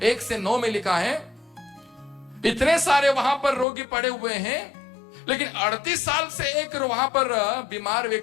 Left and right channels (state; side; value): drops out; right; at 3.7 s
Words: 1 से 9 में लिखा है। इतने सारे वहां पर रोगी पड़े हुए हैं, लेकिन 38 साल से एक वहां पर बीमार